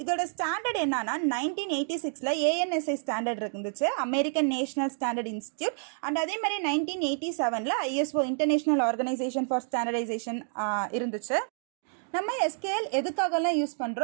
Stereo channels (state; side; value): silent; left; 59 dB below the other